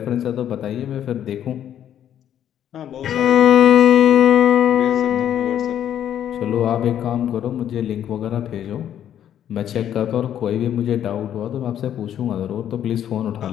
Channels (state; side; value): quieter; right; 10.4 dB